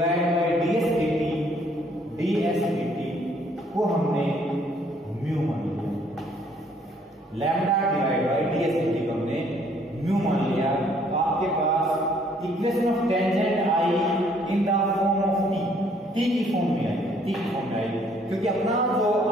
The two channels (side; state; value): both; normal; correlation 0.63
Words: by ds dt को हमने म्यू मान लिया, lambda divide by ds dt को हमने म्यू मान लिया। तो आपके पास इक्वेशन ऑफ टेंजेंट आई in the form of t की फॉर्म में आई, क्योंकि अपना जो